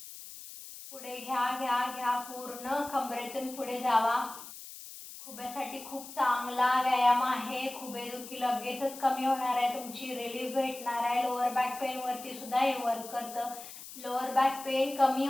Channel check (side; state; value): left; noise; hiss, 14 dB below the sound